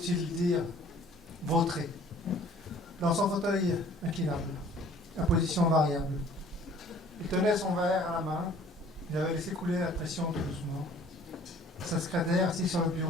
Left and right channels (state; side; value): normal; both; correlation 0.53